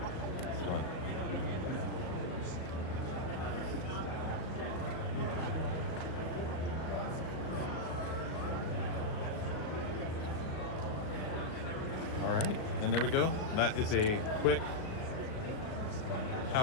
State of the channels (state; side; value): late; right; 38 ms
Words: All right, and there we go. That is a quick